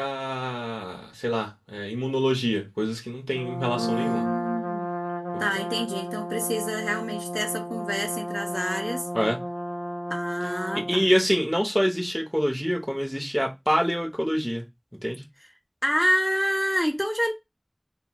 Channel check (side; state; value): both; identical; correlation 1.00